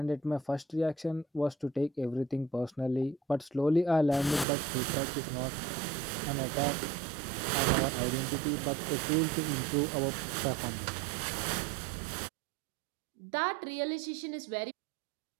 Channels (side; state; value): left; drops out; at 4.5 s